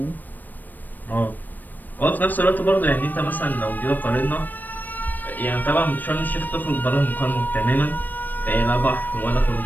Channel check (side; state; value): right; late; 0.088 ms